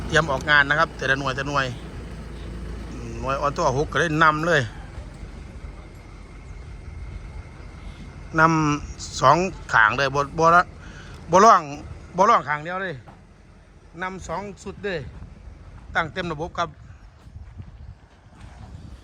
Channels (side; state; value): both; identical; correlation 1.00